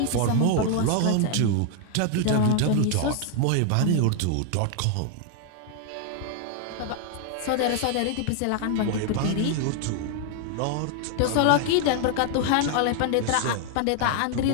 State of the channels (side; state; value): both; different; correlation 0.00